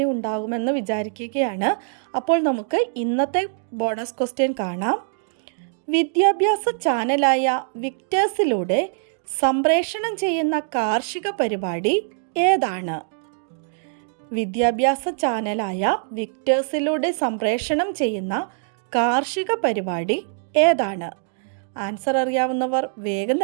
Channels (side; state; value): left; silent; digital silence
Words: ഉണ്ടാകുമെന്ന് വിചാരിക്കുകയാണ്. അപ്പോൾ നമുക്ക് ഇന്നത്തെ ബോണസ് ക്വസ്റ്റ്യൻ കാണാം. വിദ്യാഭ്യാസ ചാനലായ വിക്ടേഴ്സിലൂടെ സംപ്രേഷണം ചെയ്യുന്ന കാർഷിക പരിപാടി ഏതാണ്? വിദ്യാഭ്യാസ ചാനലായ വിക്ടേഴ്സിലൂടെ സംപ്രേഷണം ചെയ്യുന്ന കാർഷിക പരിപാടി ഏതാണ്? ആൻസർ അറിയാവുന്നവർ വേഗം